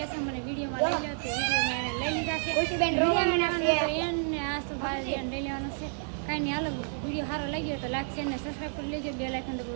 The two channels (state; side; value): silent; left; 58 dB below the other